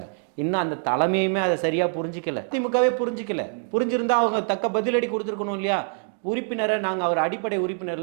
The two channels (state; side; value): silent; left; 56 dB below the other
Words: இன்னும் அந்த தலைமையுமே அதை சரியா புரிஞ்சிக்கல. திமுகவே புரிஞ்சிக்கல. புரிஞ்சிருந்தா அவங்க தக்க பதிலடி கொடுத்துருக்கணும் இல்லையா? உறுப்பினரை நாங்க அவர் அடிப்படை உறுப்பினர்